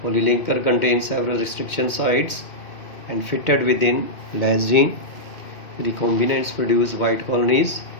Polylinker contains several restriction sites and fitted within less gene. Recombinants produce white colonies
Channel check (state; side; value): late; right; 2.1 ms